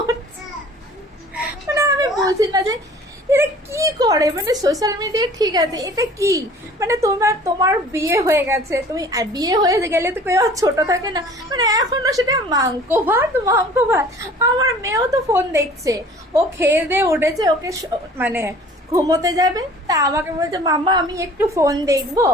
মানে আমি বুঝি না যে এটা কি করে, মানে সোশ্যাল মিডিয়া ঠিক আছে, এটা কি মানে তোমার বিয়ে হয়ে গেছে, তুমি বিয়ে হয়ে গেলে তো কেউ ছোট থাকে না, মানে এখনো সেটা মাংস ভাত। আমার মেয়েও তো ফোন দেখছে, ও খেয়ে দিয়ে উঠেছে, ওকে মানে ঘুমোতে যাবে, তা আমাকে বলছে মাম্মা আমি একটু ফোন দেখবো।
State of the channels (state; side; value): normal; both; correlation 0.48